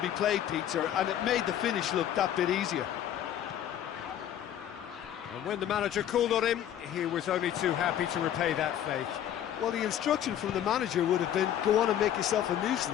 be played, Peter, and it made the finish look that bit easier. And when the manager called on him, he was only too happy to repay that faith. Well, the instruction from the manager would have been, go on and make yourself a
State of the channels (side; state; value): right; quieter; 10.7 dB